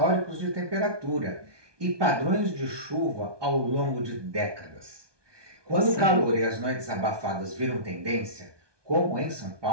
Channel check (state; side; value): late; left; 1.2 ms